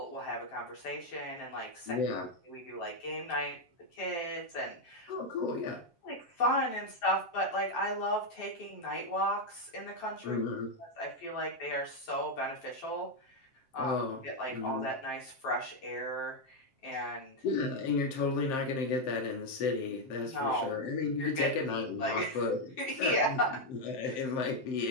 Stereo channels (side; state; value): right; late; 7.6 ms